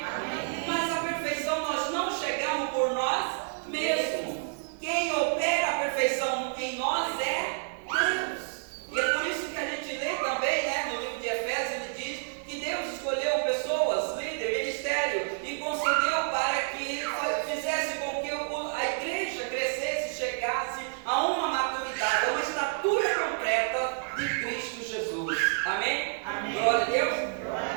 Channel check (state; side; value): silent; left; digital silence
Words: Mas a perfeição nós não chegamos por nós mesmos. Quem opera a perfeição em nós é Deus. E é por isso que a gente lê também, né, no livro de Efésios, ele diz que Deus escolheu pessoas, líder, ministério, e concedeu para que fizesse com que a igreja crescesse, chegasse a uma maturidade, a uma estatura completa de Cristo Jesus. Amém? Glória a Deus.